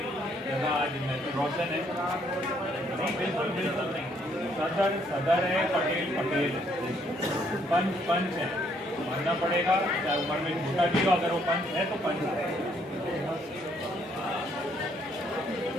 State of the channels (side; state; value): both; normal; correlation 0.68